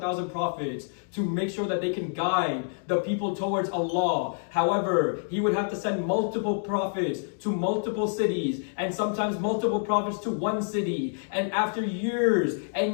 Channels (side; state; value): right; silent; digital silence